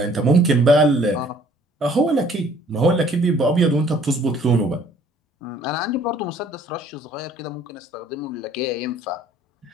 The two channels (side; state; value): both; normal; correlation 0.57